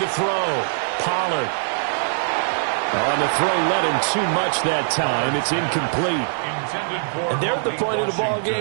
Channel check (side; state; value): left; silent; digital silence